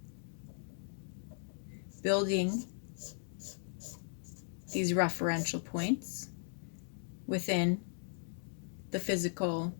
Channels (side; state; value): right; silent; digital silence